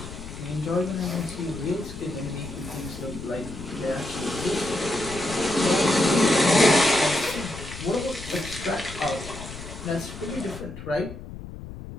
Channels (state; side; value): noise; left; rumble, 12 dB below the sound